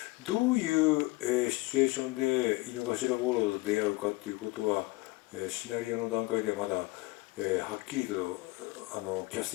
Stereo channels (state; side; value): quieter; right; 22.1 dB